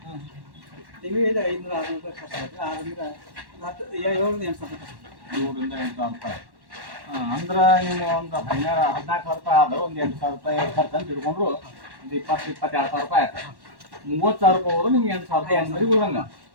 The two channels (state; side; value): late; left; 1.1 ms